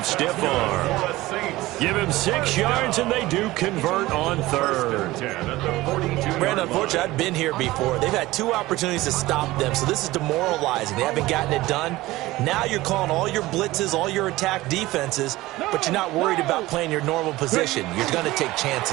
stiff arm. Give him 6 yards, and they do convert on third. Brandon, unfortunately, I've been here before. They've had 2 opportunities to stop them, so this is demoralizing. They haven't gotten it done. Now you're calling all your blitzes, all your attack defenses, but you're not worried about playing your normal position. You're going to take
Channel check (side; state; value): left; quieter; 18.3 dB